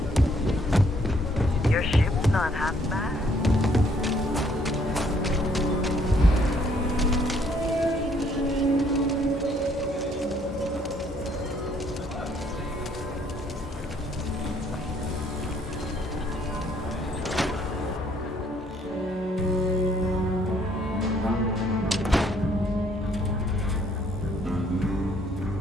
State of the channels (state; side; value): normal; both; correlation 0.65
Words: Your ship's not half bad.